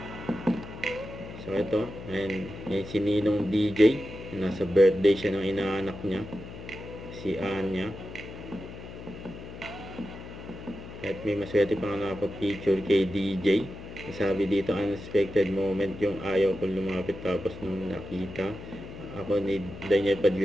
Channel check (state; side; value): noise; left; hum, 12 dB below the sound